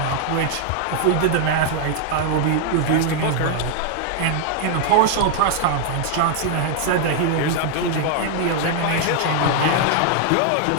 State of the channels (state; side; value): different; both; correlation 0.00